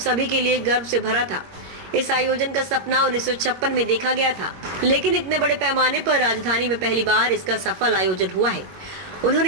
के लिए गर्व से भरा था। इस आयोजन का सपना 1956 में देखा गया था, लेकिन इतने बड़े पैमाने पर राजधानी में पहली बार इसका सफल आयोजन हुआ है।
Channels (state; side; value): late; left; 21 ms